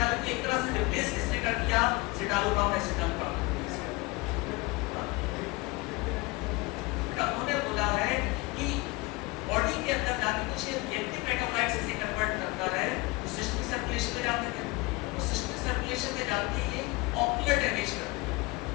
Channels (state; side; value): quieter; right; 24.0 dB